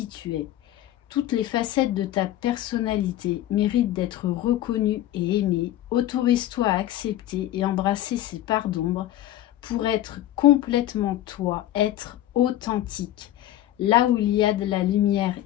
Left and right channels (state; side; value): quieter; right; 13.5 dB